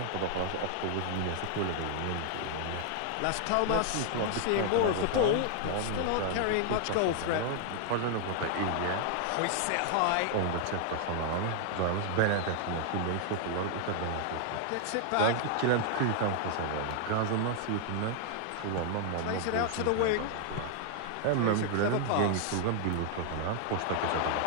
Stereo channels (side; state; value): both; different; correlation 0.00